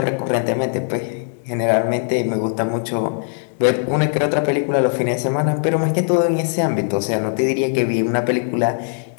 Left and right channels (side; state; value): right; silent; digital silence